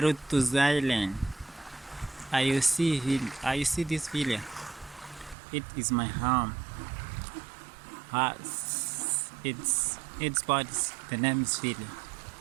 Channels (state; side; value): drops out; left; at 5.4 s